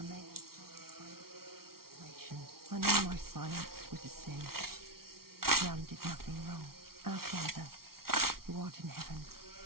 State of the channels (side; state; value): left; late; 0.94 ms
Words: may have silence by the situation. I know my silence was a sin. Jan did nothing wrong. Our Father, who art in heaven,